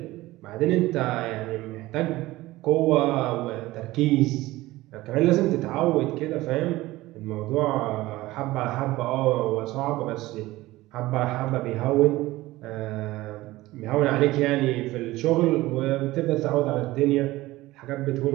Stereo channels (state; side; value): quieter; left; 18.2 dB